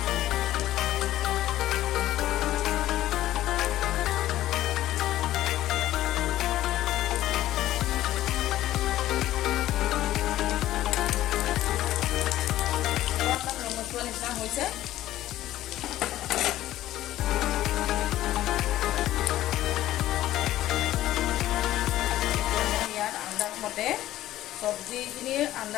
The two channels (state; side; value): quieter; right; 14.2 dB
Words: নিচিনা হৈছে। ইয়াত আন্দাজমতে চব্জিখিনিৰ